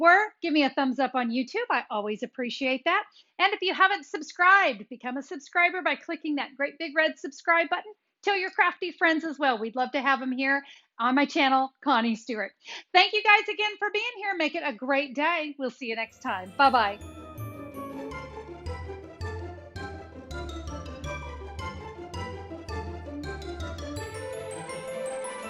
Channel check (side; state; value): both; identical; correlation 1.00